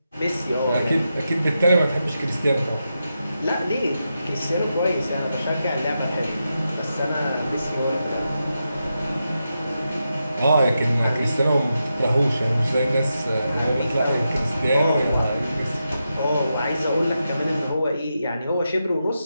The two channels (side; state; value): both; inverted; correlation -0.87